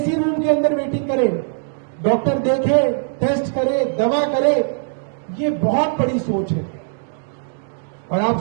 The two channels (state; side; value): silent; left; digital silence